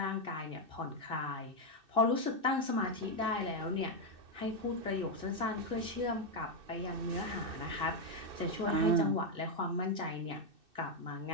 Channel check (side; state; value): left; late; 2.6 ms